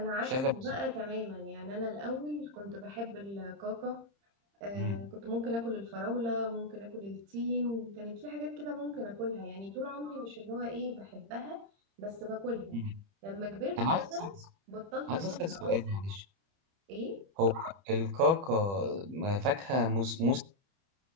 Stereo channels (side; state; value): left; late; 30 ms